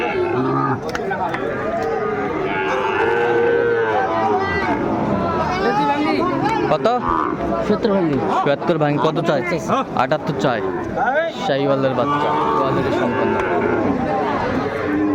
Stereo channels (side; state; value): both; identical; correlation 1.00